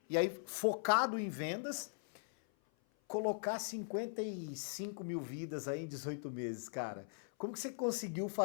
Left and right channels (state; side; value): silent; right; 51 dB below the other